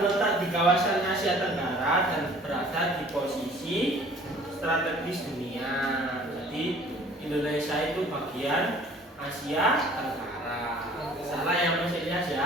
di kawasan Asia Tenggara dan berada di posisi strategis dunia. Jadi Indonesia itu bagian Asia Tenggara. Salah yang masih Ilyas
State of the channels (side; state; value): both; normal; correlation 0.51